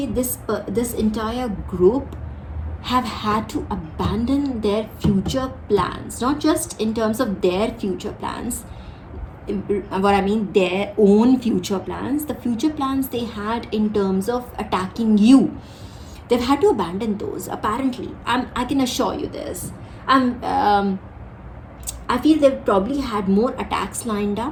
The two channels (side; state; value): both; identical; correlation 1.00